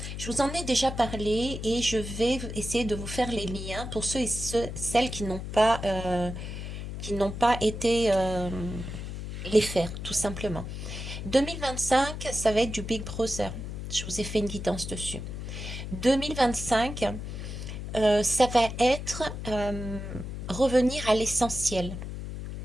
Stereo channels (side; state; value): left; noise; hum, 7 dB below the sound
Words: Je vous en ai déjà parlé et je vais essayer de vous faire les liens pour ceux et celles qui n'ont pas été les faire, tout simplement. 2025, ça va être du Big Brother. Je vous ai fait une guidance dessus. 2025, ça va être revenir à l'essentiel.